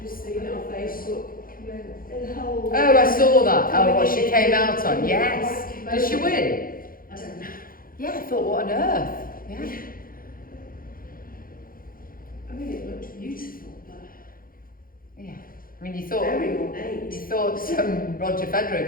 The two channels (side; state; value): right; late; 0.42 ms